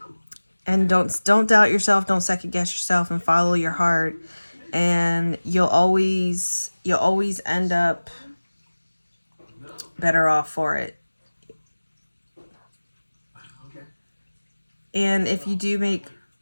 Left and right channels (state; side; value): inverted; both; correlation -1.00